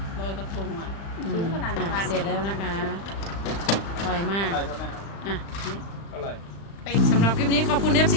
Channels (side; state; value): right; late; 35 ms